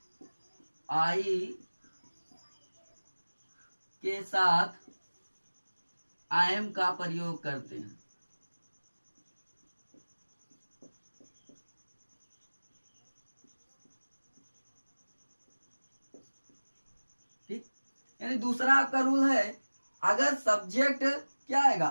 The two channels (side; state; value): both; inverted; correlation -1.00